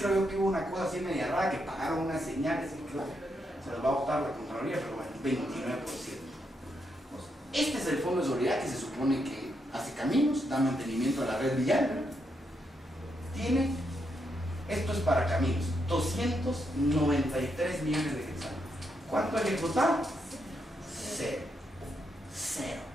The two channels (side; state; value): both; normal; correlation 0.80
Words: yo que hubo una cosa así media rara, que pagaron unas señales, y creo que se los va a votar la Contraloría, pero bueno, 29%. Pues, este es el Fondo de Solidaridad que se supone que hace caminos, da mantenimiento a la red vial, ¿verdad? Tiene, esto es para caminos, 293 millones de quetzales. ¿Cuánto ha ejecutado? Cero.